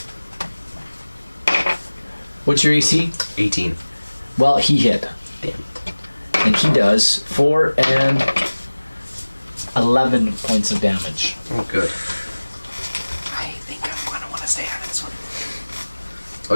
What's your AC? 18. Well, he hit. Damn. And he does 4 and 11 points of damage. Oh, good. I think I'm gonna want to stay out of this one.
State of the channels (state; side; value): inverted; both; correlation -1.00